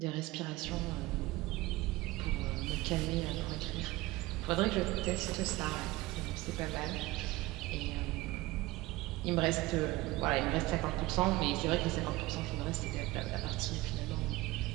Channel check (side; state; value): left; quieter; 19.4 dB